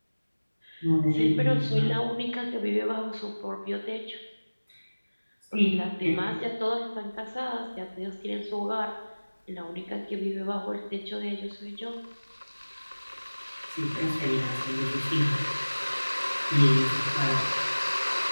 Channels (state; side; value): inverted; both; correlation -1.00